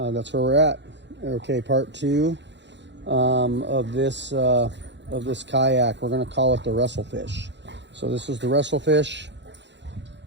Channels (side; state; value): left; late; 0.52 ms